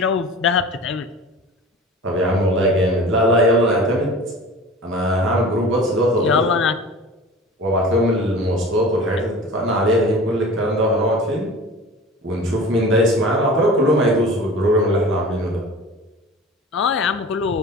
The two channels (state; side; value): normal; both; correlation 0.38